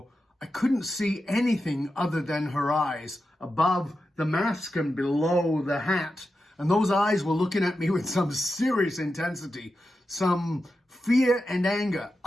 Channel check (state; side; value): normal; both; correlation 0.90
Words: I couldn't see anything other than her eyes above the mask and below the hat. And those eyes were looking at me with some serious intensity, some fear and anger.